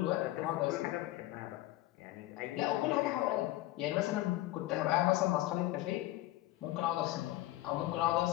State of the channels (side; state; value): right; quieter; 16.4 dB